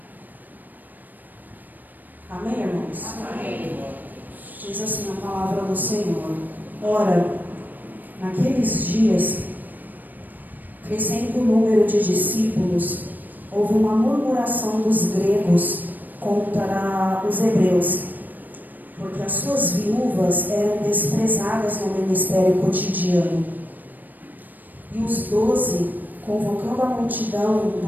Amém, irmãos? Amém. Diz assim a palavra do Senhor. Ora, naqueles dias, crescendo o número de discípulos, houve uma murmuração dos gregos contra os hebreus, porque as suas viúvas eram desprezadas no ministério cotidiano. E os 12, convocando a multidão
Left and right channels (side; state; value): left; late; 0.087 ms